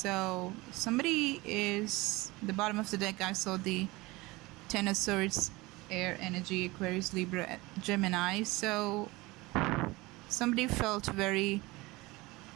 somebody is, the bottom of the deck I saw the Ten of Swords, air energy, Aquarius, Libra, Gemini. So somebody felt very,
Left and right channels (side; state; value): left; quieter; 21.8 dB